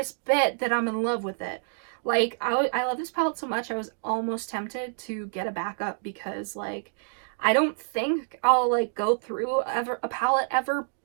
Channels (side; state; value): left; silent; digital silence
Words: bet that I'm in love with it. Like, I love this palette so much, I was almost tempted to get a backup, because like I don't think I'll like go through a palette ever,